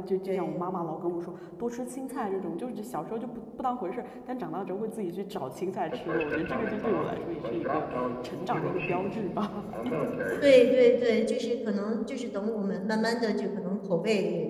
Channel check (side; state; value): both; identical; correlation 1.00